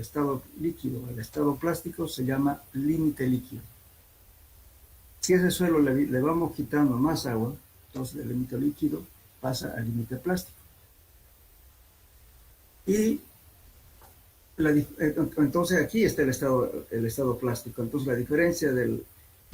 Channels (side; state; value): both; identical; correlation 1.00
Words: estado líquido al estado plástico se llama límite líquido. Si a ese suelo le vamos quitando más agua, entonces el límite líquido pasa al límite plástico. Y entonces aquí está el estado plástico. Entonces la diferencia del